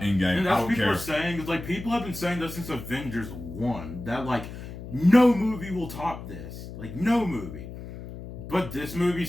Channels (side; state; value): left; noise; hum, 11 dB below the sound